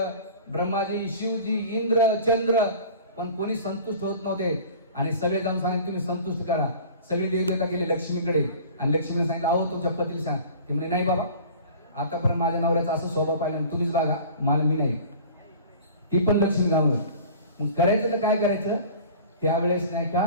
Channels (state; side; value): inverted; both; correlation -0.42